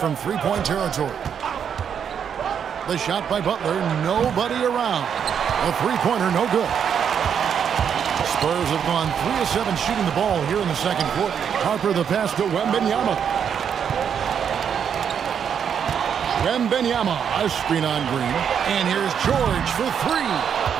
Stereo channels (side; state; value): left; quieter; 7.8 dB